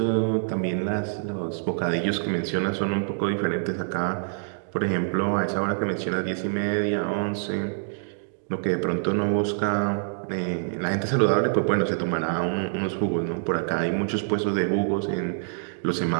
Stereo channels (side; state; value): left; silent; digital silence